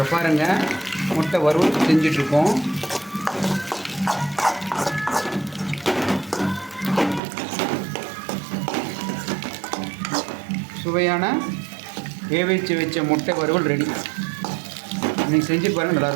பாருங்கள், முட்டை வறுவல் செஞ்சிட்ருக்கோம். சுவையான வேவிச்சு வச்ச முட்டை வறுவல் ரெடி. நீங்கள் செஞ்சு பாருங்கள்,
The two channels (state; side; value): drops out; left; at 7.2 s